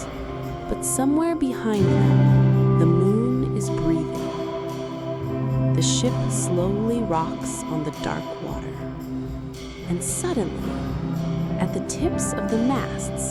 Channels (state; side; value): identical; both; correlation 1.00